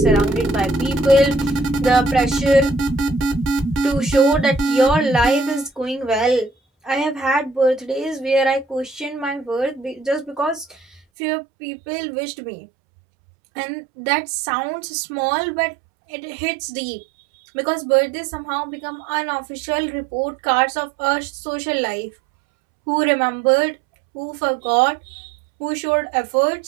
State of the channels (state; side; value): drops out; left; at 11.0 s